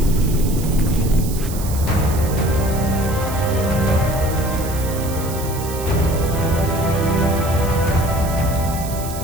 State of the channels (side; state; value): right; noise; hiss, 12 dB below the sound